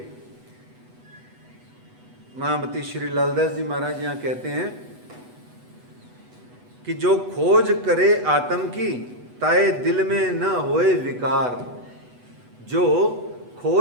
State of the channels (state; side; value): late; left; 8.1 ms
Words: महामती श्री लालदास जी महाराज यहाँ कहते हैं कि जो खोज करे आत्म की, ताए दिल में न होए विकार। जो